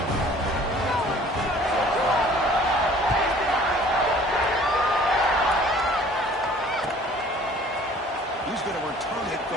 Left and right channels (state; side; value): normal; both; correlation 0.52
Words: He's going to return it